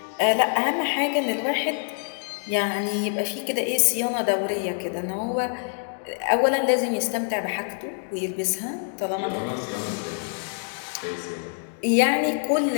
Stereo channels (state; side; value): silent; right; digital silence